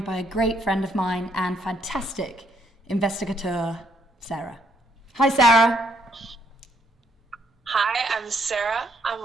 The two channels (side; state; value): both; normal; correlation 0.71